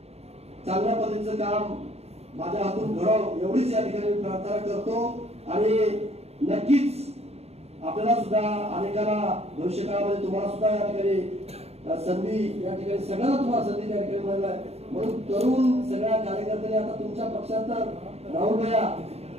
चांगल्या पद्धतीचं काम माझ्या हातून घडावं एवढीच या ठिकाणी प्रार्थना करतो आणि नक्कीच आपल्याला सुद्धा अनेकांना भविष्य काळामध्ये तुम्हाला सुद्धा या ठिकाणी संधी या ठिकाणी सगळ्यांना तुम्हाला संधी त्या ठिकाणी मिळाली आहे. म्हणून तरुण सगळ्या कार्यकर्त्यांनी आता तुमच्या पक्षात तर राहुल भैया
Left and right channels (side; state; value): left; late; 0.30 ms